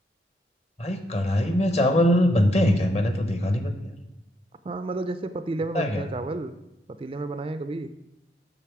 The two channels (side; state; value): both; normal; correlation 0.76